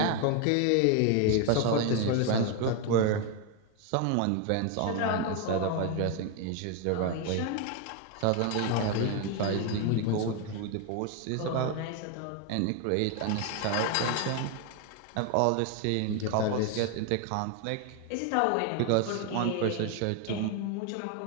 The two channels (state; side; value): different; both; correlation 0.01